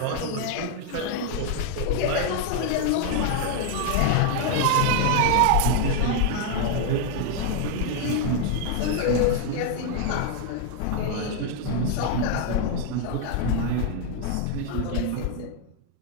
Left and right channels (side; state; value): both; different; correlation 0.00